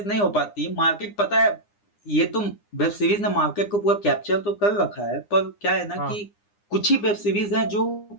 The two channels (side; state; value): right; late; 9.8 ms